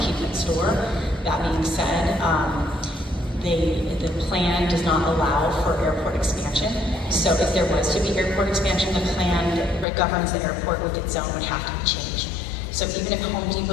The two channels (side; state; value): right; drops out; at 9.9 s